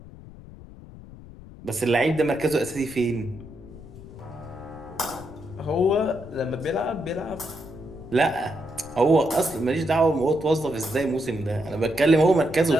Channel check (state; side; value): noise; left; rumble, 17 dB below the sound